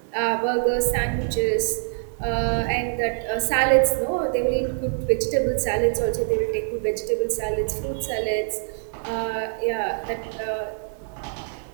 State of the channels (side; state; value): left; silent; digital silence